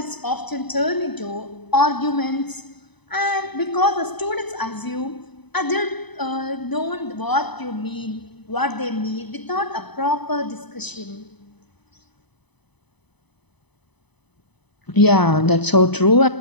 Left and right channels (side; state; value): right; late; 0.99 ms